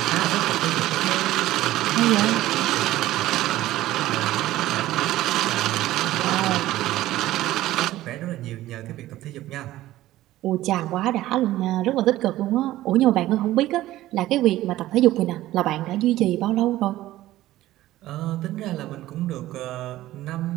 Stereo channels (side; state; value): left; quieter; 15.4 dB